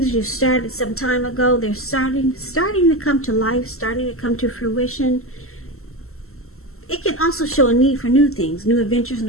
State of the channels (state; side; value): late; right; 0.63 ms